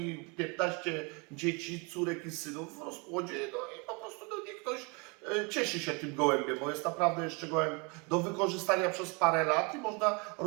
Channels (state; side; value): quieter; left; 30.6 dB